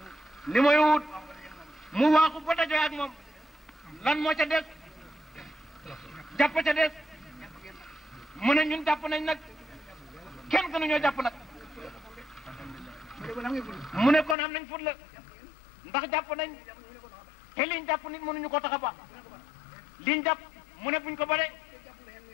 li mooy wut mu waaxu ba dajoo ak moom lan moo ca des jàpp ca des mu ne ñun jàpp nañ nag kenn gënu ñoo jàpp nag mu ne kon am nañ fut la ndax jàpp nañ te liñ jàpp nit mënuñu ko tax a baax liñ jàpp mu ne buñ ko bare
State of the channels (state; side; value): drops out; right; at 14.4 s